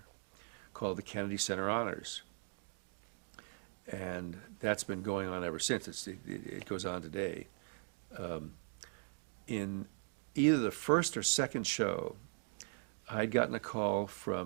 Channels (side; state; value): left; silent; 51 dB below the other